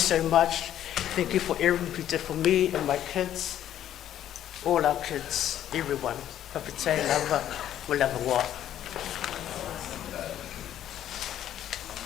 much. Thank you for everything you did for me and my kids, all our kids, everyone. Papite, lava, we'll have a walk.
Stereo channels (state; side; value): quieter; right; 11.3 dB